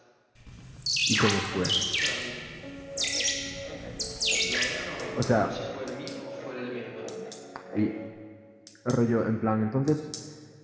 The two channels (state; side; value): identical; both; correlation 1.00